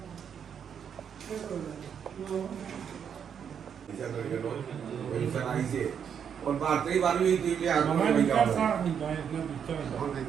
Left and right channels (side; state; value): left; quieter; 7.8 dB